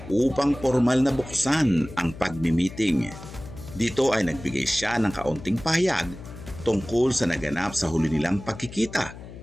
upang formal na buksan ang pagmi-meeting. Dito ay nagbigay siya ng kaunting pahayag tungkol sa naganap sa huli nilang pagkikita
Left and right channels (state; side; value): noise; left; hum, 14 dB below the sound